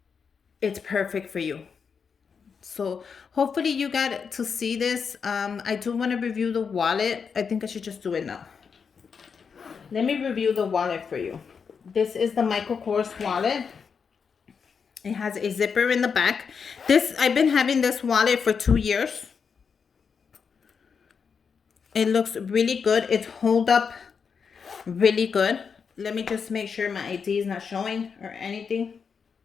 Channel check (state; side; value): quieter; right; 6.1 dB